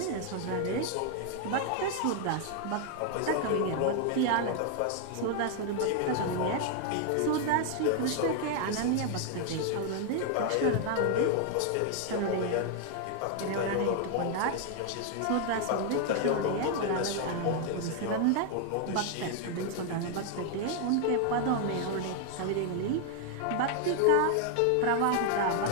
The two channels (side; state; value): both; different; correlation 0.00